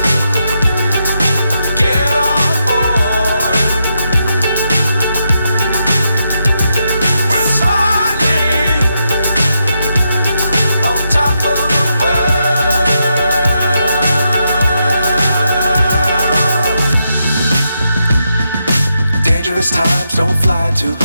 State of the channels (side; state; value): both; inverted; correlation -0.83